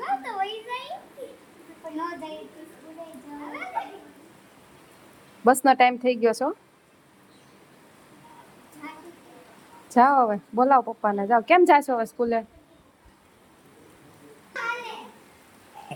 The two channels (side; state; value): both; identical; correlation 1.00